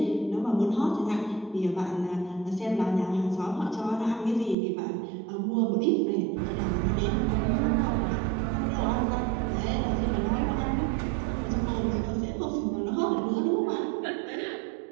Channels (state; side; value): drops out; left; at 4.5 s